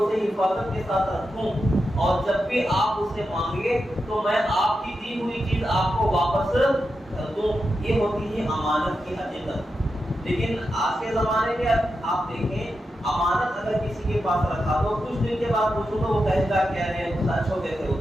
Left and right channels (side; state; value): both; normal; correlation 0.88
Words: حفاظت کے ساتھ رکھوں اور جب بھی آپ اسے مانگے تو میں آپ کی دی ہوئی چیز آپ کو واپس کر دوں. یہ ہوتی ہے امانت کی حقیقت. لیکن آج کے زمانے میں آپ دیکھیں امانت اگر کسی کے پاس رکھا تو کچھ دن کے بعد پوچھو تو وہ کہے گا کیا رہے سچ ہو گئے تھے وہ